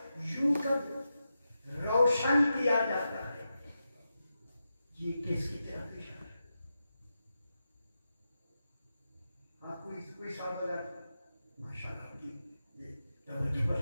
یوں کا روشن کیا جاتا ہے. یہ کس کی طرف اشارہ ہے؟ آپ کوئی سوال ہے؟ ماشاءاللہ کی یہ توجہ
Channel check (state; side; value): inverted; both; correlation -0.89